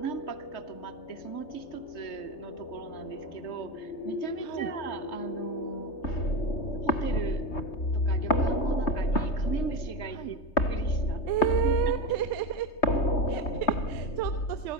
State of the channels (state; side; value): late; right; 3.3 ms